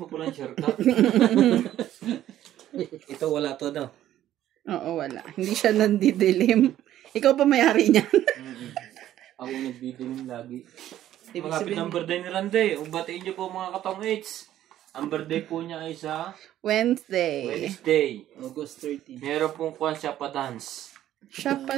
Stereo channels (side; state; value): left; quieter; 12.5 dB